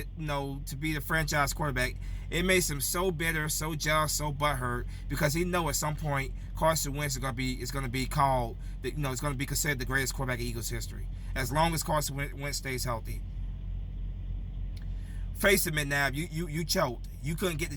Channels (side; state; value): both; identical; correlation 1.00